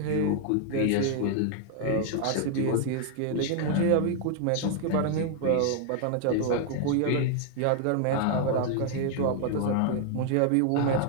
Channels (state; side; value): different; both; correlation 0.00